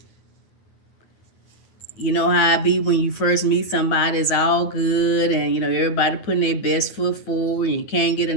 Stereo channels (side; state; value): right; late; 9.4 ms